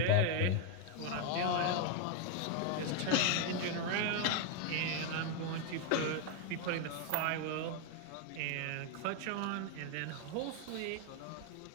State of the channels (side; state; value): both; different; correlation 0.01